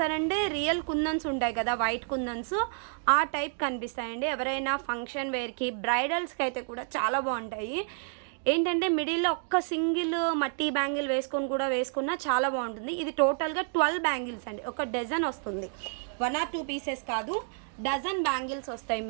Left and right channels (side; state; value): left; silent; 58 dB below the other